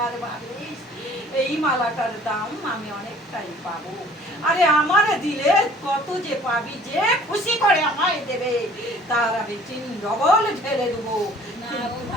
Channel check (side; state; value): both; normal; correlation 0.52